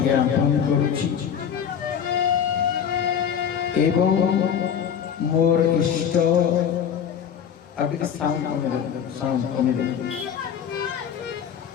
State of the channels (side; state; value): right; quieter; 8.2 dB